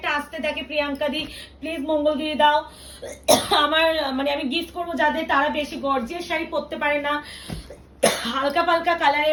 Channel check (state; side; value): identical; both; correlation 1.00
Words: আসতে থাকে, প্রিয়াঙ্কা দি প্লিজ মঙ্গলগিরি দাও। আমার মানে আমি গিফট করবো যাদের তারা বেশি গর্জিয়াস শাড়ি পরতে পারে না, হালকা পালকা কালারে